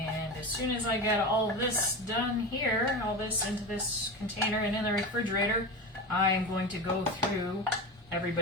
as soon as I get all of this done here, all this into this container and in the refrigerator, I am going to go through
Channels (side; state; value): both; normal; correlation 0.25